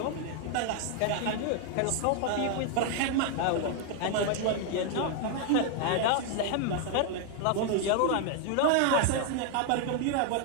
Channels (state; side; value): different; both; correlation 0.00